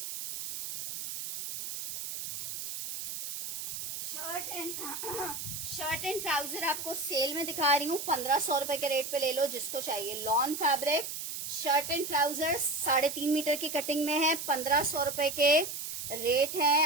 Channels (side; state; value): right; noise; hiss, 6 dB below the sound